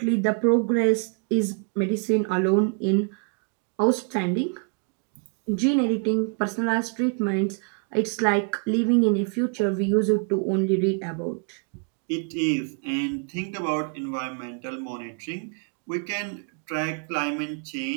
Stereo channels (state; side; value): quieter; left; 37.5 dB